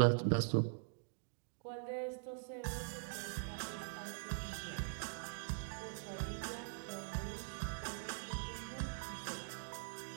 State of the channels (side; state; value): left; silent; digital silence